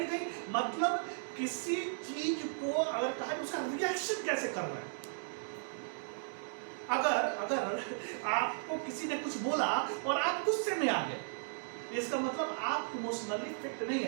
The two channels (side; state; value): left; silent; digital silence